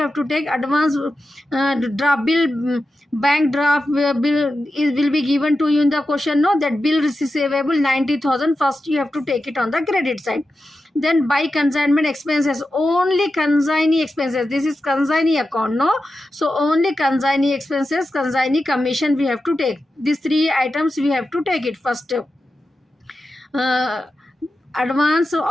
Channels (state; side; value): normal; both; correlation 0.91